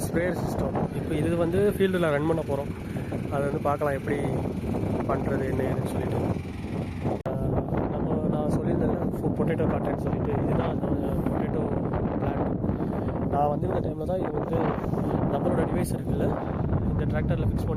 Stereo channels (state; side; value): identical; both; correlation 1.00